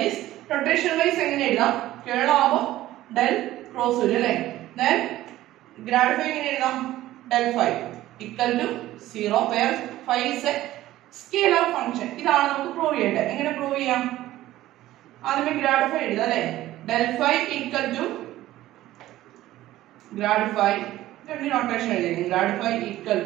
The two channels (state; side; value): quieter; left; 15.1 dB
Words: is notation wise എങ്ങനെ എഴുതാം, curl ആവുമ്പോൾ del cross വരും അല്ലേ. then grad phi എങ്ങനെ എഴുതാം, del phi equal to 0 where phi is a scalar function. ഇതാണ് നമുക്ക് പ്രൂവ് ചെയ്യേണ്ടത്. എങ്ങനെ പ്രൂവ് ചെയ്യാം, ആദ്യമേ grad phi എഴുതാം അല്ലേ. del phi equal to grad phi, രണ്ട് നോട്ടേഷൻ എഴുതിയിരിക്കുന്നു. grad phi equal